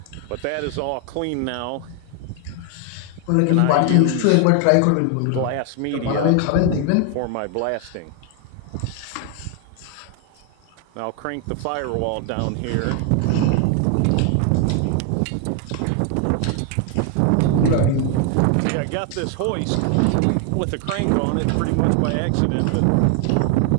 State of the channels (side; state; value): both; different; correlation 0.00